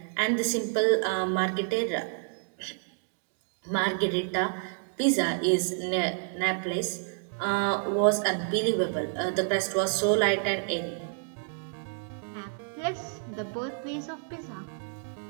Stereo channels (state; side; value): silent; left; 58 dB below the other